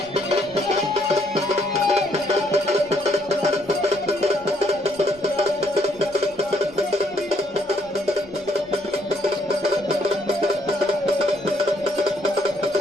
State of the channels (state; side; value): noise; left; rumble, 27 dB below the sound